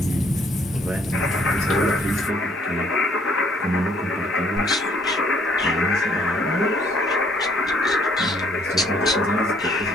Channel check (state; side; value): normal; both; correlation 0.64